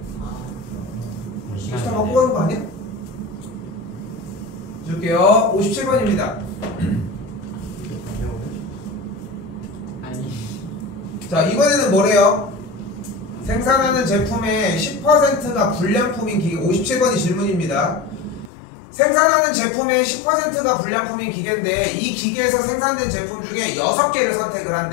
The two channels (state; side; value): drops out; right; at 18.5 s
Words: 우리 시간 시간 갖고 가는 거 아니야? 줄게요. 57번입니다 아니 자, 이번에는 뭐래요? 생산하는 제품의 10%가 불량품인 기계. 57번이 질문입니다. 생산하는 제품의 10%가 불량품인 기계인데 이 기계에서 생산된 제품 중에 6개를 선택을